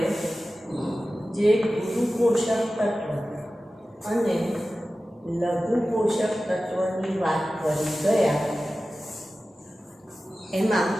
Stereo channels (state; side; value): normal; both; correlation 0.95